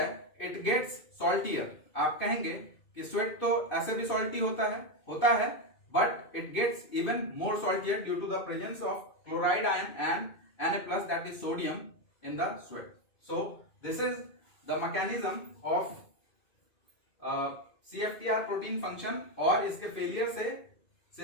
इट गेट्स सॉल्टियर। आप कहेंगे कि स्वेट तो ऐसे भी सॉल्टी होता है but it gets even more saltier due to the presence of chloride ion and Na+ that is sodium in the sweat. So this is the mechanism of CFTR protein function, और इसके failure से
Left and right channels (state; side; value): late; right; 2.5 ms